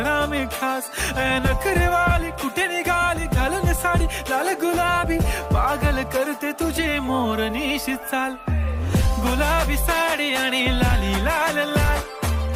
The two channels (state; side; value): identical; both; correlation 1.00